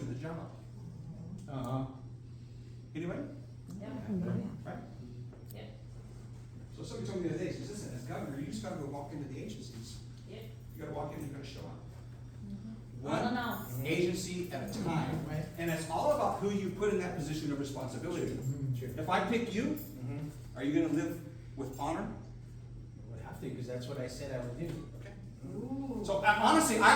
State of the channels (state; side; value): identical; both; correlation 1.00